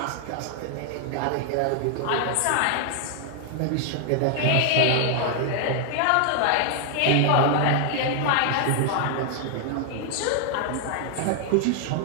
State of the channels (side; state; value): both; different; correlation 0.00